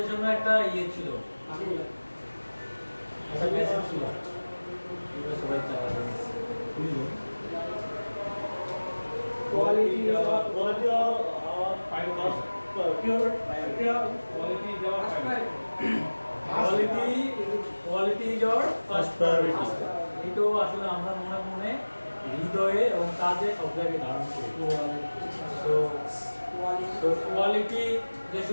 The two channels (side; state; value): both; inverted; correlation -1.00